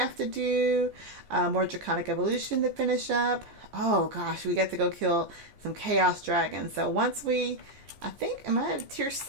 to do. More draconic evolution to finish up. Oh gosh, we got to go kill some chaos dragons. So once I think, am I at tier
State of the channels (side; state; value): left; late; 14 ms